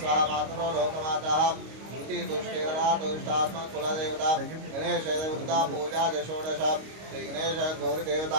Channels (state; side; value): late; left; 25 ms